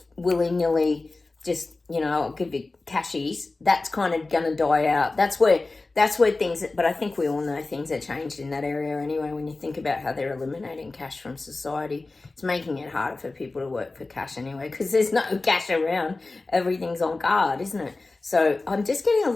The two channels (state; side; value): quieter; right; 3.4 dB